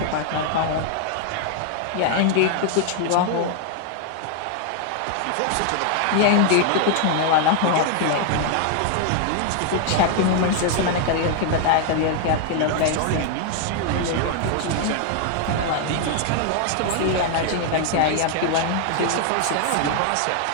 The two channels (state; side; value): different; both; correlation 0.00